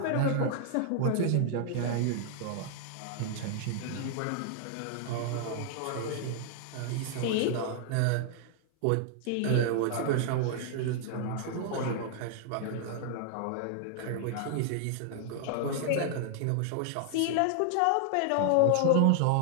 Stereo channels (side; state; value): both; different; correlation 0.00